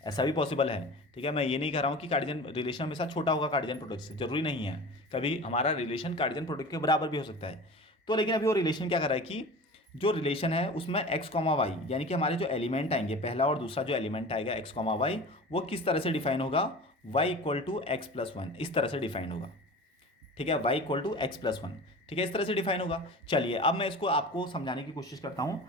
है। ठीक है, मैं ये नहीं कह रहा हूँ कि कार्डियन रिलेशन हमेशा छोटा होगा कार्डियन प्रोडक्ट से, जरूरी नहीं है। कभी हमारा रिलेशन कार्डियन प्रोडक्ट के बराबर भी हो सकता है। तो लेकिन अभी वो रिलेशन क्या कर रहा है कि जो रिलेशन है उसमें एक्स कॉमा वाई, यानी कि हमारे जो एलिमेंट आएंगे, पहला और दूसरा जो एलिमेंट आएगा एक्स कॉमा वाई, वो किस तरह से डिफाइन होगा, y equal to x plus one, इस तरह से डिफाइन होगा। ठीक है, y equal to x plus one. ठीक है, इस तरह से डिफाइन होगा। चलिए अब मैं इसको आपको समझाने की कोशिश करता हूँ,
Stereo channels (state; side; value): normal; both; correlation 0.36